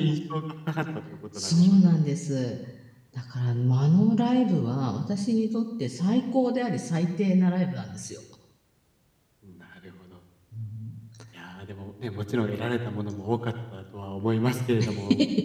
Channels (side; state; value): both; identical; correlation 1.00